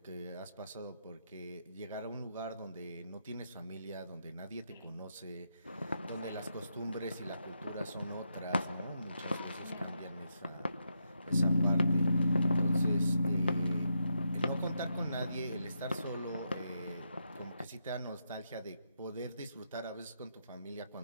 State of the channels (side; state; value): both; inverted; correlation -0.82